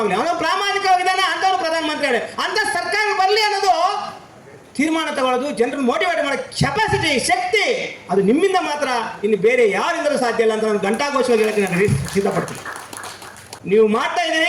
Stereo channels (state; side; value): identical; both; correlation 1.00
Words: ಆಗಲಿ, ಅವನು ಪ್ರಾಮಾಣಿಕವಾಗಿದ್ದಾನ ಅಂತವ್ನು ಪ್ರಧಾನಮಂತ್ರಿ ಆಗಲಿ, ಅಂತ ಸರ್ಕಾರ ಬರಲಿ ಅನ್ನೋದು ತೀರ್ಮಾನ ತಗೊಳ್ಳೋದು, ಜನರನ್ನು ಮೋಟಿವೇಟ್ ಮಾಡೋ ಕೆಪಾಸಿಟಿ, ಶಕ್ತಿ ಅದು ನಿಮ್ಮಿಂದ ಮಾತ್ರ, ಇನ್ನು ಬೇರೆ ಯಾರಿಂದಲೂ ಸಾಧ್ಯ ಇಲ್ಲ ಅಂತ ನಾನು ಘಂಟಾಘೋಷವಾಗಿ ಹೇಳಕ್ಕೆ ನಾನು ಸಿದ್ಧಪಡ್ತೀನಿ. ನೀವು ಮಾಡ್ತಾ